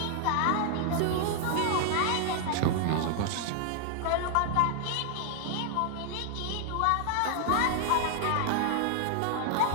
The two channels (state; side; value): different; both; correlation 0.00